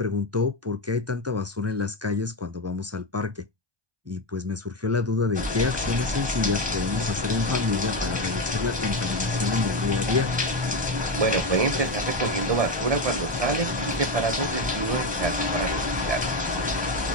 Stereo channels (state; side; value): late; left; 1.2 ms